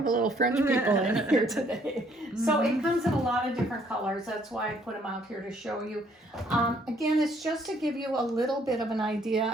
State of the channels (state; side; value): normal; both; correlation 0.64